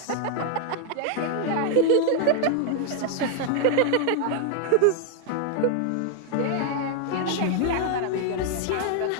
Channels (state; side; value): different; both; correlation 0.00